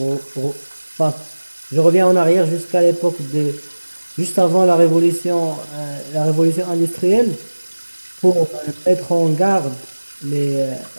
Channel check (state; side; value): inverted; both; correlation -1.00